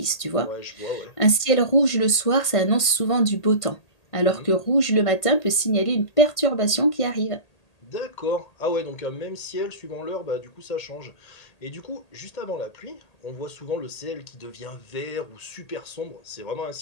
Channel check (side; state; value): right; late; 1.8 ms